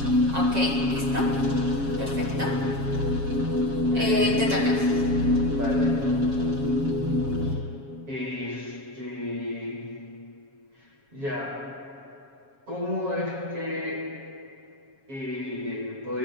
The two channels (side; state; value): left; late; 7.3 ms